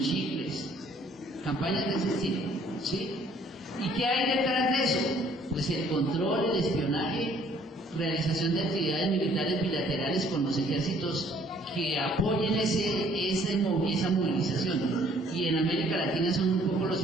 chicles, campañas de ese estilo, ¿sí? ¿Y qué hay detrás de eso? Pues el control, el espionaje, realización de actividades militares bilaterales con los ejércitos que apoyen esa movilización. Y en América Latina son un poco los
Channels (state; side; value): normal; both; correlation 0.60